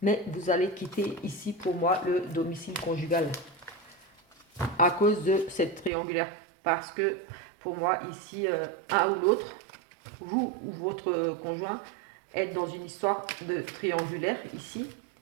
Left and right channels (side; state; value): left; drops out; at 5.9 s